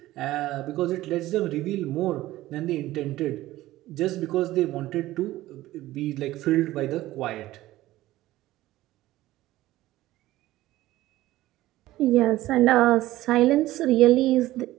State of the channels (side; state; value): left; quieter; 16.2 dB